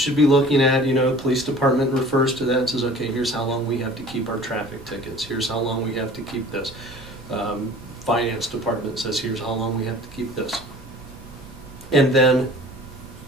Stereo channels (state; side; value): normal; both; correlation 0.45